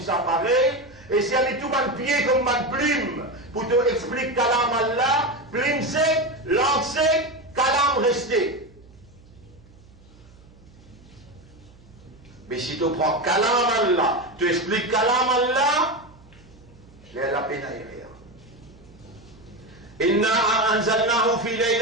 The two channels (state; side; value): noise; right; hum, 25 dB below the sound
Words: apparaît. Et si elle est tout mal pied comme mal plume, pour te expliquer kalam Allah, plume sec, langue sec, kalam resté. Mais si tu prends kalam Allah, tu expliques kalam Allah, il y a la peine à y rire. Inna anzalnahu fi